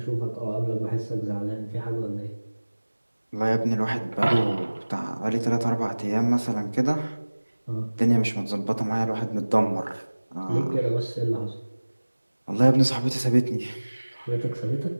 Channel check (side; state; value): both; inverted; correlation -1.00